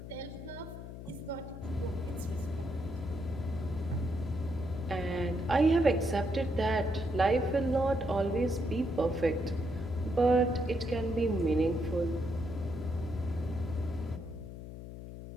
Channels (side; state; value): left; noise; hum, 11 dB below the sound